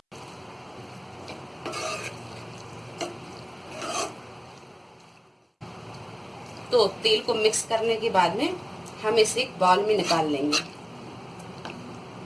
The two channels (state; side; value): identical; both; correlation 1.00